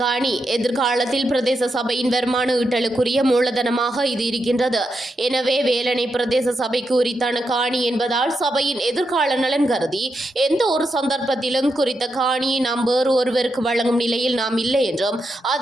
எதிர்காலத்தில் பிரதேச சபையின் வருமான ஈட்டலுக்குரிய மூலதனமாக இது இருக்கின்றது. எனவே வேலணை பிரதேச சபைக்கு உரித்தான காணி என்பதால் சபையின் எதிர்கால நலன் கருதி எந்த ஒரு சந்தர்ப்பத்திலும் குறித்த காணியை நாம் வேறு ஒருவருக்கு வழங்கும் நிலையில் நாம் இல்லை என்றும்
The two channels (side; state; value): both; normal; correlation 0.84